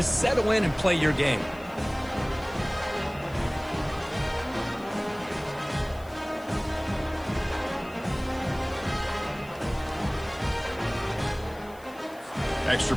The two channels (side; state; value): left; noise; hiss, 24 dB below the sound